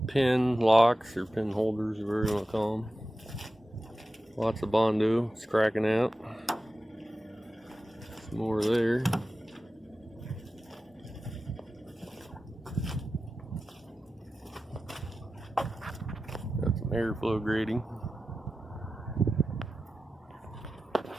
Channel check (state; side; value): normal; both; correlation 0.94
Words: pin locks or pin holders, or whatever you want to call them. Lots of Bondo. It's cracking out. Some more there. Got some airflow grating.